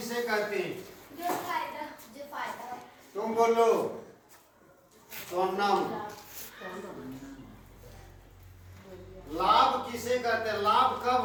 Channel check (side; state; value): both; identical; correlation 1.00